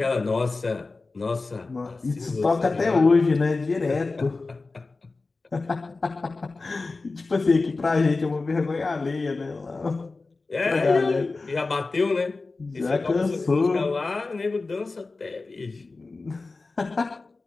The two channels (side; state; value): right; quieter; 3.7 dB